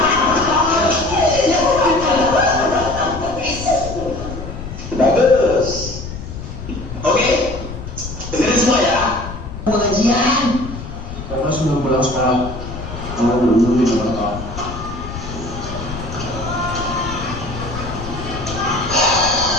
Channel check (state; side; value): noise; left; rumble, 9 dB below the sound